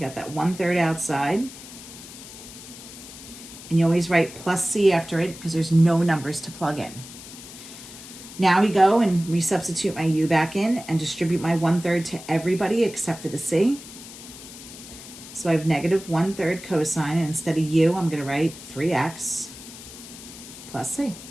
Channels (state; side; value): noise; left; hiss, 15 dB below the sound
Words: that 1/3 outside. And you always write plus c after it because there's no numbers to plug in. Now we go and resubstitute my u back in and distribute my 1/3 to everybody except for the c. So I have negative 1/3 cosine, and instead of u, I'm going to write 3x plus c.